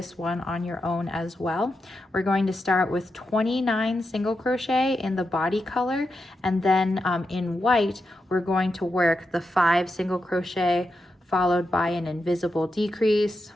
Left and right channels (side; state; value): both; normal; correlation 0.87